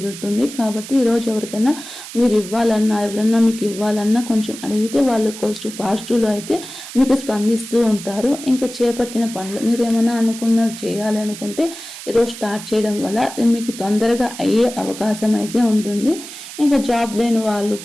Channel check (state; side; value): noise; right; hiss, 13 dB below the sound